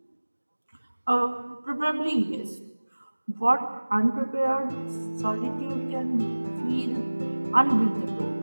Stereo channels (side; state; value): both; inverted; correlation -1.00